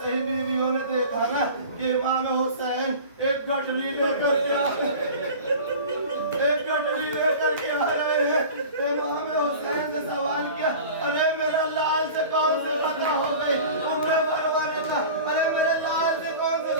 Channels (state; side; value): inverted; both; correlation -0.38